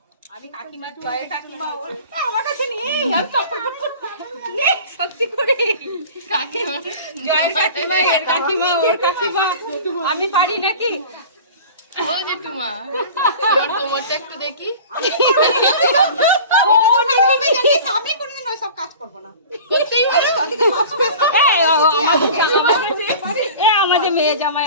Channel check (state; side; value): inverted; both; correlation -0.39